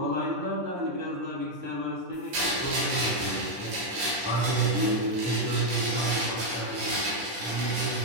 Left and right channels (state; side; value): late; left; 10 ms